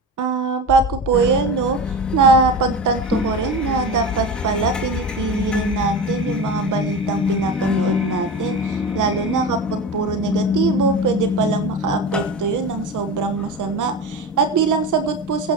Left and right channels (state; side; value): normal; both; correlation 0.28